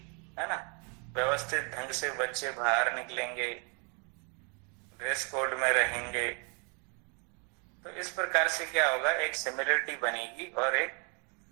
है ना, व्यवस्थित ढंग से बच्चे बाहर निकलेंगे, ड्रेस कोड में रहेंगे। तो इस प्रकार से क्या होगा, एक सिमिलरिटी बनेगी और एक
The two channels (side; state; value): left; quieter; 36.1 dB